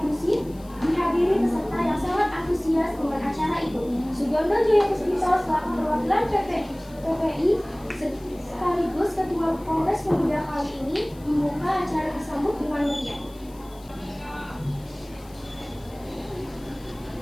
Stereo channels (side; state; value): left; noise; hiss, 25 dB below the sound